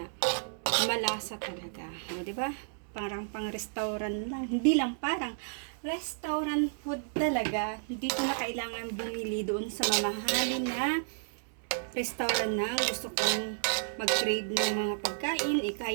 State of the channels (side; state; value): left; silent; 57 dB below the other